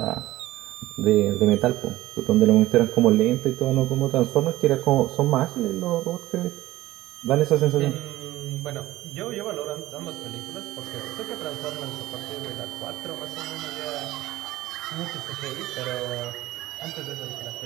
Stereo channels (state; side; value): quieter; left; 16.5 dB